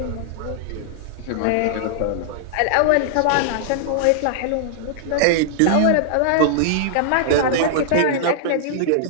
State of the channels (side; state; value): both; different; correlation -0.01